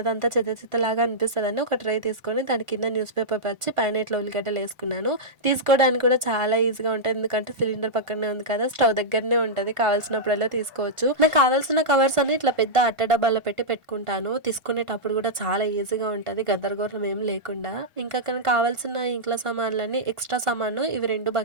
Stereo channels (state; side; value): late; left; 1.4 ms